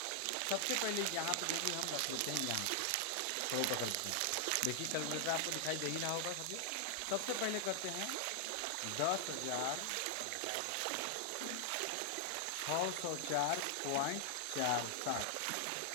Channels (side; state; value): both; different; correlation 0.00